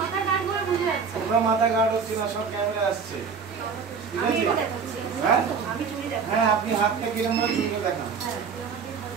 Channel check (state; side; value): quieter; left; 5.9 dB